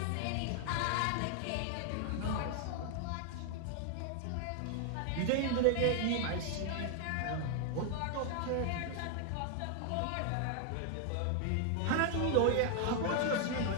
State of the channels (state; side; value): different; both; correlation 0.00